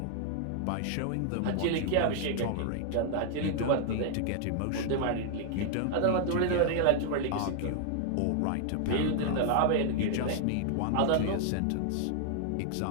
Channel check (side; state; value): both; different; correlation 0.00